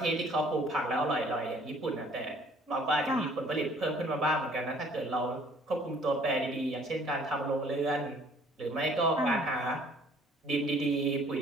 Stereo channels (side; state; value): both; normal; correlation 0.57